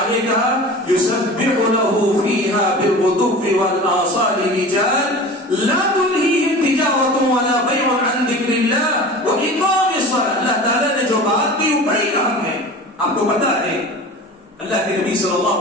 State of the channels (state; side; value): normal; both; correlation 0.36